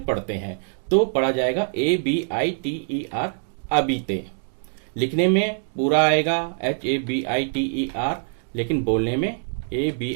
पढ़ते हैं तो पढ़ा जाएगा ABITER, अबीते। लिखने में पूरा आएगा HABITER, लेकिन बोलने में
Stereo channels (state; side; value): silent; left; digital silence